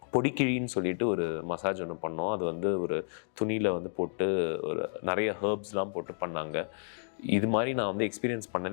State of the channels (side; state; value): right; silent; digital silence